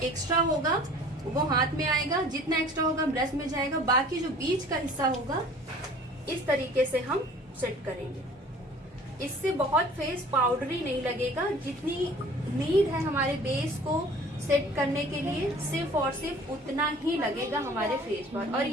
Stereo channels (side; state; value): both; normal; correlation 0.48